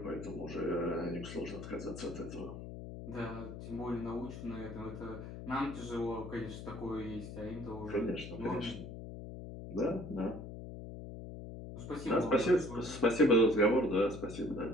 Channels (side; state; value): left; noise; hum, 10 dB below the sound